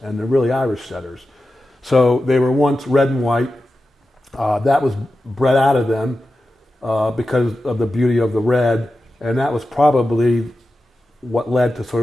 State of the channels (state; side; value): normal; both; correlation 0.92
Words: and they're really Irish setters. So they were once red and white. That was bred out of them because of the beauty of the red, and that was probably what led to sort